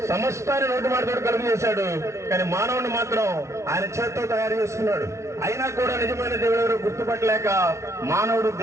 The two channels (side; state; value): left; late; 0.14 ms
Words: సమస్తాన్ని నోటి మాటతో కలుగు చేశాడు, కానీ మానవుని మాత్రం ఆయన చేత్తో తయారు చేసుకున్నాడు. అయినా కూడా నిజమైన దేవుడు ఎవరు గుర్తుపట్టలేక మానవుడు